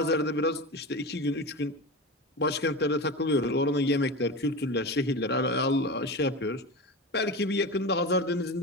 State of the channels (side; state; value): both; normal; correlation 0.25